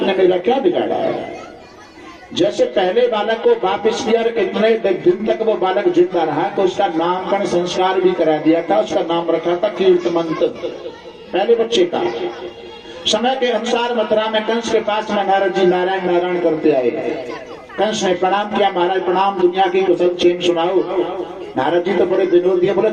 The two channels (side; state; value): both; identical; correlation 1.00